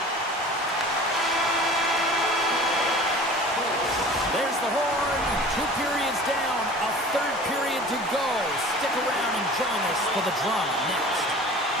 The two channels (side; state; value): both; normal; correlation 0.42